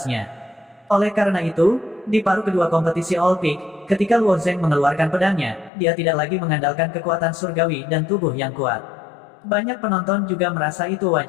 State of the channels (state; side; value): drops out; right; at 5.7 s